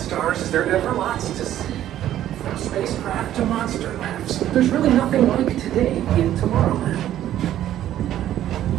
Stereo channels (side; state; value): left; quieter; 12.2 dB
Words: there are ever lots to see. From spacecraft to monster labs, there's really nothing like today in Tomorrowland.